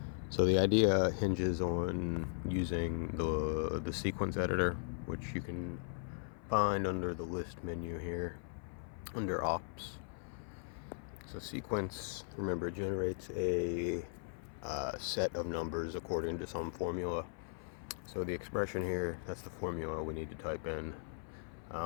So the idea hinges on using the sequence editor, which you can find under the list menu here, under ops. So sequence, remember, it generates a set of numbers according to some formula. So the expression here, that's the formula we need to type in.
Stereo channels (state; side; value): silent; right; 52 dB below the other